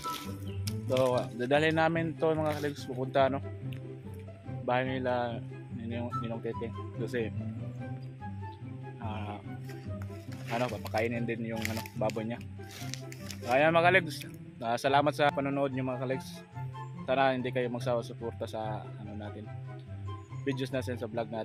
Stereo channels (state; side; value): identical; both; correlation 1.00